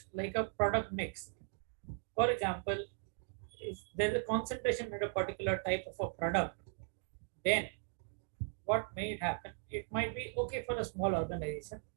like a product mix. For example, if there's a concentration in a particular type of a product, then what may happen? It might be okay for a small organization,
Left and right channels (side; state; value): left; silent; 52 dB below the other